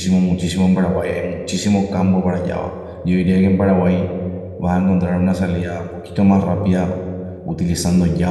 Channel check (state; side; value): identical; both; correlation 1.00